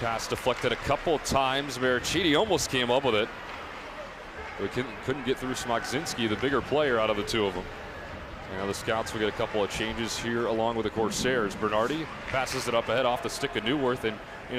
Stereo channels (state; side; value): identical; both; correlation 1.00